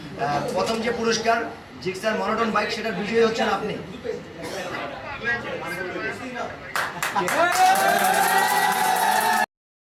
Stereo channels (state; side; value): identical; both; correlation 1.00